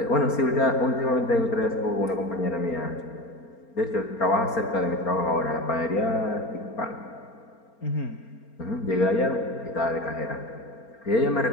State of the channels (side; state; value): right; late; 4.3 ms